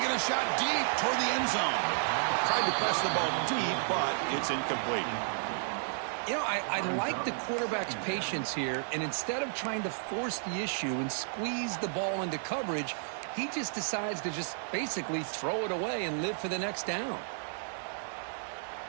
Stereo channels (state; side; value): silent; left; 56 dB below the other